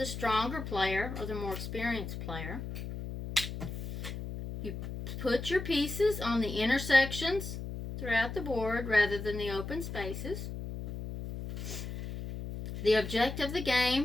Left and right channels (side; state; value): left; noise; hum, 7 dB below the sound